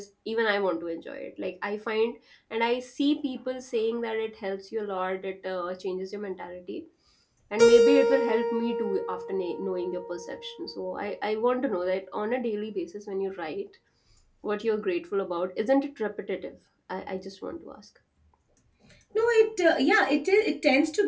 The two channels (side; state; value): both; identical; correlation 1.00